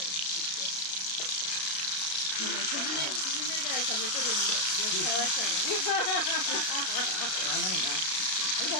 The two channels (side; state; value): right; late; 32 ms